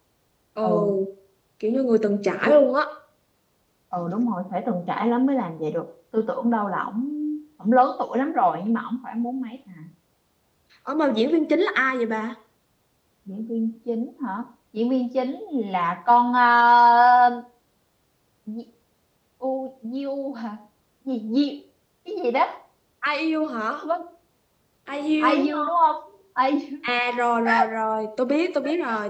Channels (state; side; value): identical; both; correlation 1.00